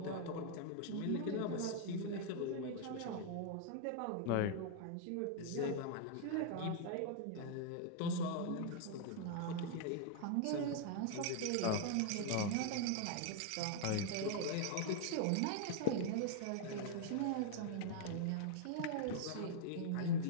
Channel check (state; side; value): different; both; correlation 0.00